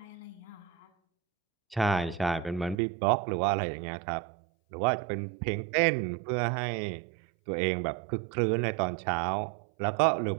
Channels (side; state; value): left; drops out; at 2.8 s